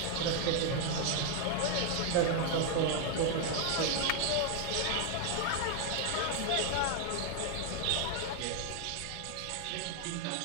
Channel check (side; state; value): both; different; correlation 0.00